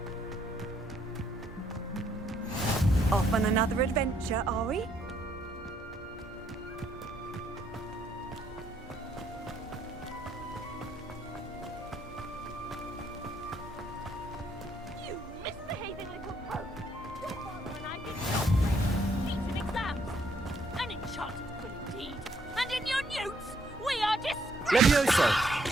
Off on another adventure, are we? You misbehaving little pug! Your father and I did not play feats in exams. An enchanted quill indeed. And in your newts, we are disgraced! Levioso.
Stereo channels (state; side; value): normal; both; correlation 0.70